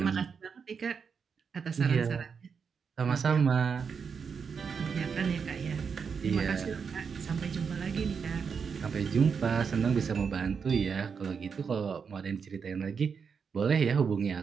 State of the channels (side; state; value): left; quieter; 6.1 dB